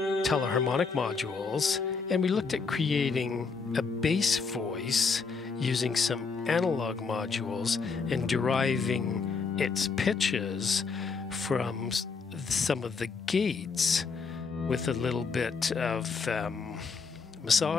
teleharmonic modules, and we looked at creating a bass voice using some analog modules and deriving its pitches from some of the gates with a little bit of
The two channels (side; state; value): right; quieter; 4.9 dB